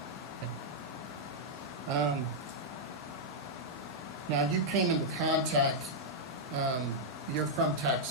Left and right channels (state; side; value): normal; both; correlation -0.06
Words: Now, you came into contact, you're from